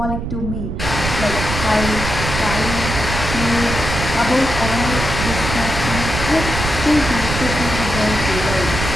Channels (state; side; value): noise; right; rumble, 4 dB below the sound